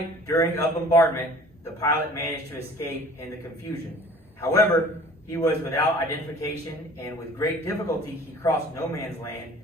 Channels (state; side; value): normal; both; correlation 0.49